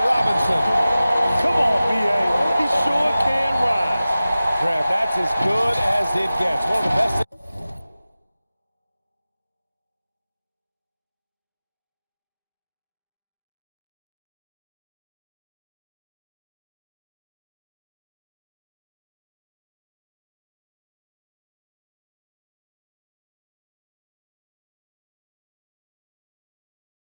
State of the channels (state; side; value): inverted; both; correlation -0.96